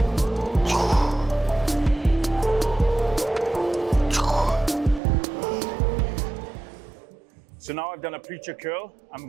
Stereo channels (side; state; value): left; drops out; at 5.0 s